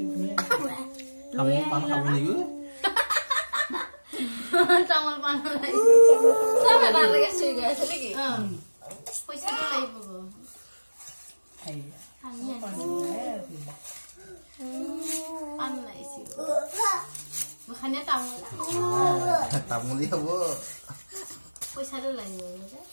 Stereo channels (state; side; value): inverted; both; correlation -1.00